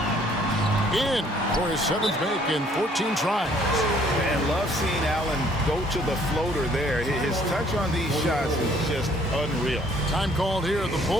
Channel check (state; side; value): normal; both; correlation 0.61